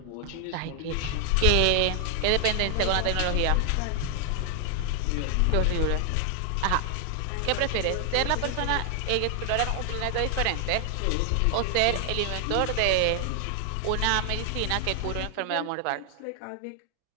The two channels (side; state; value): both; different; correlation 0.00